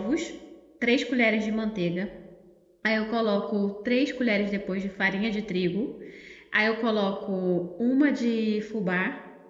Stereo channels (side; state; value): both; identical; correlation 1.00